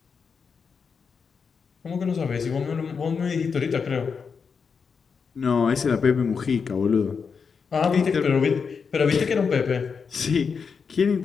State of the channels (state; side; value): quieter; right; 5.8 dB